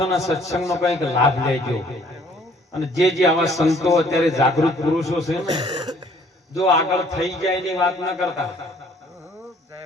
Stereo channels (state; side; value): normal; both; correlation 0.59